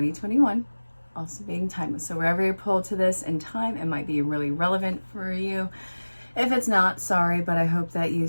Also being timeless. So wherever you're pulled to this in time, it might be really relevant for you. If it's not, sorry, but I hope that you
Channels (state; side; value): inverted; both; correlation -1.00